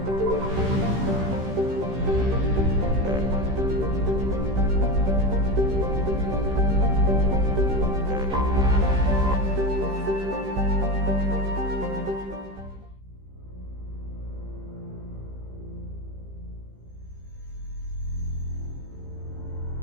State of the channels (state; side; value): late; left; 15 ms